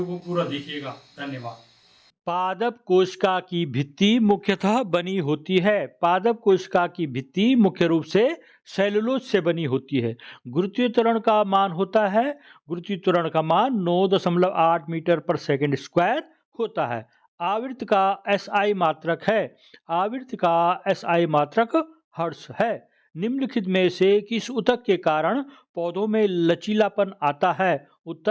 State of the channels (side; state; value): both; identical; correlation 1.00